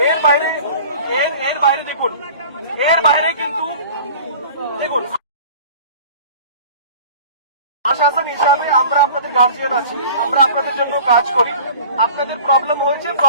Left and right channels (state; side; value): inverted; both; correlation -0.43